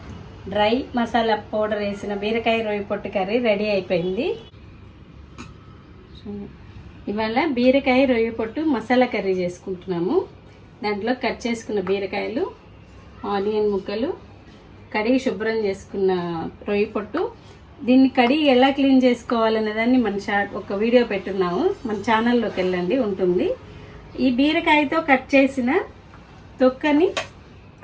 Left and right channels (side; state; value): both; identical; correlation 1.00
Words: డ్రై మసాలా పౌడర్ వేసిన బీరకాయ రొయ్యి పొట్టు కర్రీ రెడీ అయిపోయింది. ఇవాళ బీరకాయ రొయ్యి పొట్టు మసాలా కర్రీ చేసుకుంటున్నాము. దాంట్లో కట్ చేసుకున్న బీరకాయలు, ఆనియన్ ముక్కలు, కడిగి శుభ్రం చేసుకున్న రొయ్యి పొట్టు. దీన్ని కడిగి ఎలా క్లీన్ చేసుకోవాలనే దాన్ని ఒక వీడియో పెట్టున్నాము, మన ఛానల్లోకి వెళ్ళండి, ఉంటుంది. ఈ బీరకాయతో కట్ చేసిన తొక్కని